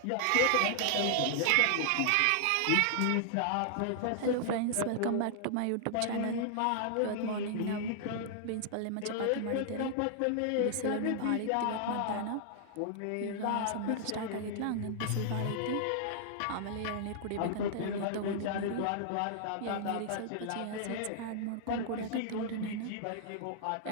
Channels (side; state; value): both; different; correlation -0.01